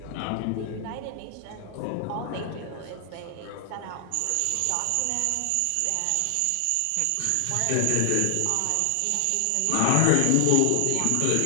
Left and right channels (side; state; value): both; different; correlation 0.00